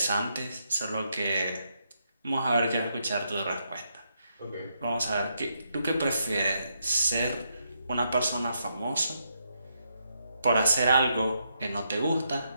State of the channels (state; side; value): inverted; both; correlation -0.79